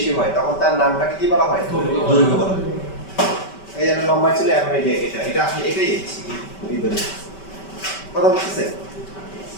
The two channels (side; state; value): right; late; 5.2 ms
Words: হয় তখন তার নামটাকে কি বলা হয় দৈর্ঘ্য বলা হয় এই যে লম্বা ছিল এখন এই যে এটা আসলে এটাই এই দৈর্ঘ্য কথা বুঝতেছেন